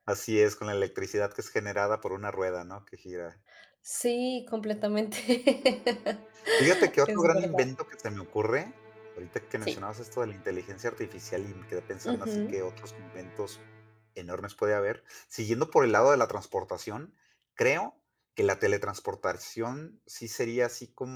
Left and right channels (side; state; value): both; identical; correlation 1.00